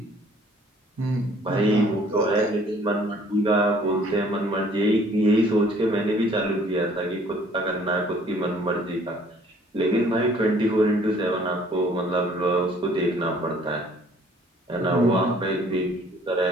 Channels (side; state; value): both; normal; correlation 0.57